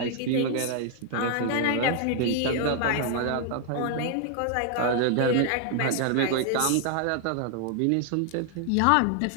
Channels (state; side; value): different; both; correlation 0.00